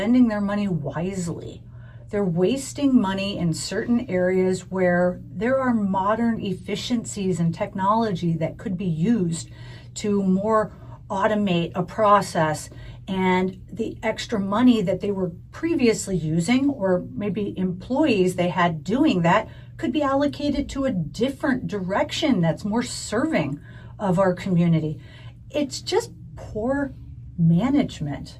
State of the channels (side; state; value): both; identical; correlation 1.00